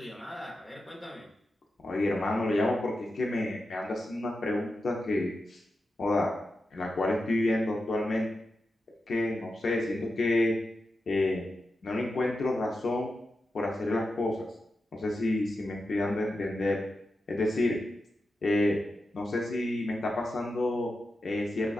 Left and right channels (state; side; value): normal; both; correlation 0.90